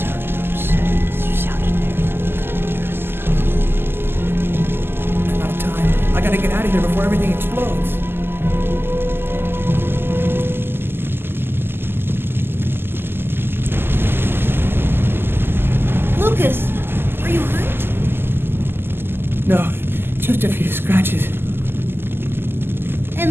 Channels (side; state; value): left; late; 0.11 ms